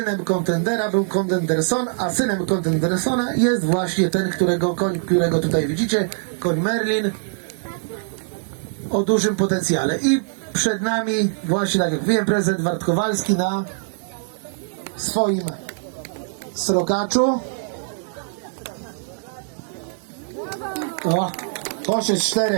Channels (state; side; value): silent; left; digital silence